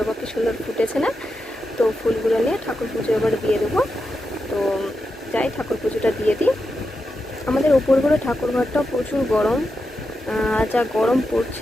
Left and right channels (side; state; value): both; normal; correlation 0.88